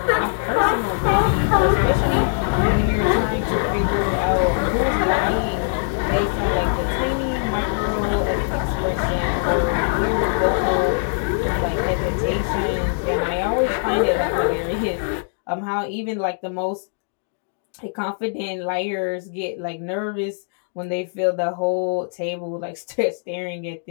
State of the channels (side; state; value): right; silent; digital silence